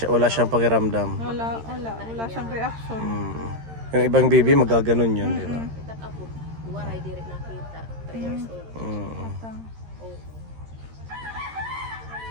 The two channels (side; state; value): left; late; 13 ms